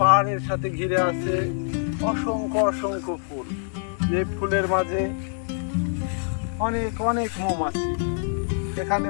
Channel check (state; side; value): silent; right; 62 dB below the other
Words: পাহাড়ের সাথে ঘিরে আছে অসংখ্য অসংখ্য ফুল। যে ফুলের মাঝে অনেক অনেক মৌমাছি, এখানে